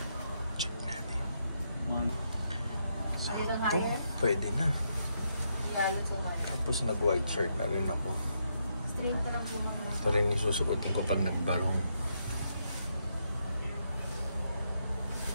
Check natin. Ito, pwede na. Tapos nag-white shirt na rin ako. Ito rin yung susukotin ko pag nagbarong.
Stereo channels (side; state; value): both; inverted; correlation -0.79